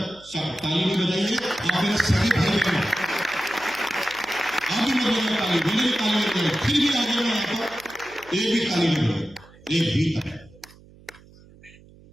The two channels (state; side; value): noise; right; hum, 24 dB below the sound